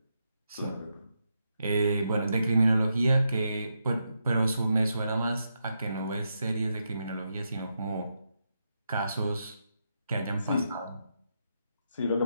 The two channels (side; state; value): both; inverted; correlation -0.83